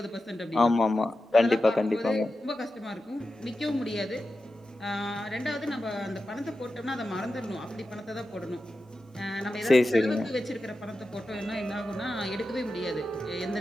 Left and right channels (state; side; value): normal; both; correlation 0.91